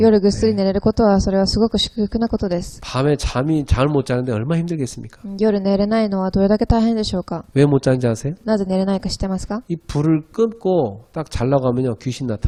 ぐっすり寝れることは、それはすごく祝福なことです。 밤에 잠을 못 자는데 얼마나 힘들겠습니까? 夜寝れないのはどれだけ大変でしょうか。 왜 못 자는지 아세요? なぜ寝れないか知ってますか。 이 불을 끊고 딱 자려고 하면요 귀신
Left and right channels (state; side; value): identical; both; correlation 1.00